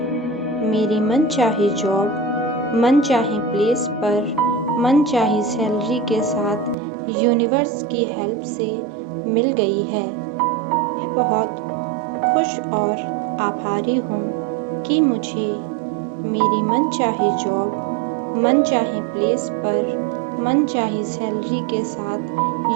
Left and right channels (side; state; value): left; drops out; at 6.8 s